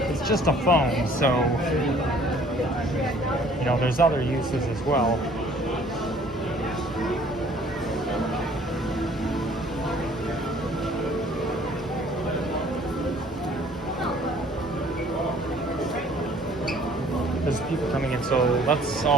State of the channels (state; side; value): normal; both; correlation 0.56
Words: it's just a phone, so, you know, there's other uses as well. There's people coming in, so that's